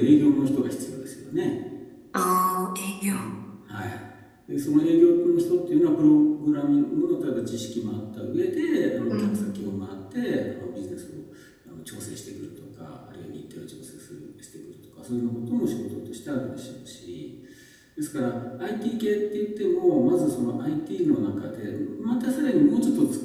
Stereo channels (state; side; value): identical; both; correlation 1.00